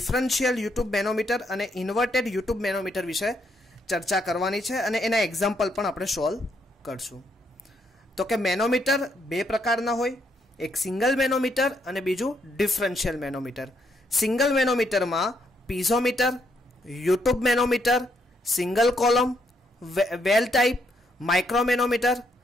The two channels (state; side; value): normal; both; correlation 0.75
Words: યુટ્યુબ મેનોમીટર અને ઇન્વર્ટેડ યુટ્યુબ મેનોમીટર વિશે ચર્ચા કરવાની છે અને એના એક્ઝામ્પલ પણ આપણે સોલ્વ કરશું. તો કે મેનોમીટર બે પ્રકારના હોય, એક સિંગલ મેનોમીટર અને બીજું ડિફરન્શિયલ મેનોમીટર. સિંગલ મેનોમીટરમાં piezometer, U tube manometer, single column, well type, micromanometer,